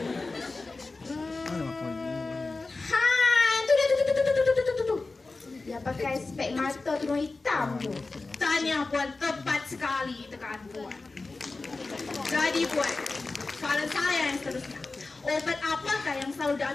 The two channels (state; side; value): quieter; right; 3.6 dB